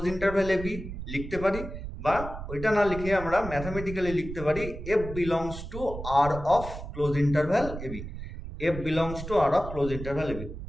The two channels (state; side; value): noise; right; rumble, 9 dB below the sound